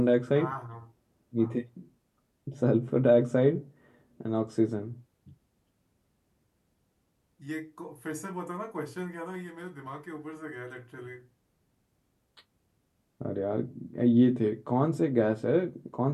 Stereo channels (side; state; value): both; identical; correlation 1.00